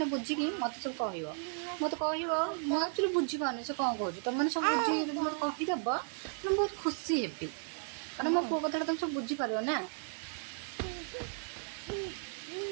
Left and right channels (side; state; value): left; silent; 55 dB below the other